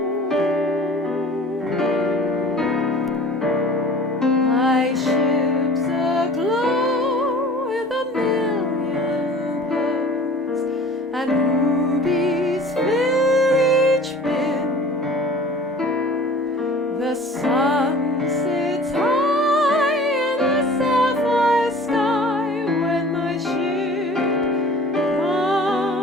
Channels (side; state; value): both; normal; correlation 0.44